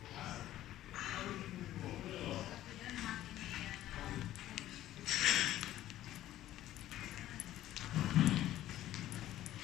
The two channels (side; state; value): right; quieter; 13.7 dB